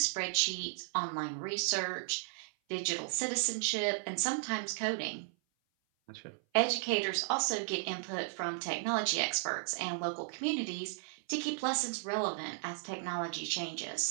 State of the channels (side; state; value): left; silent; 54 dB below the other